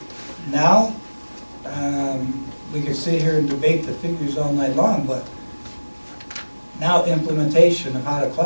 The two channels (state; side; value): inverted; both; correlation -1.00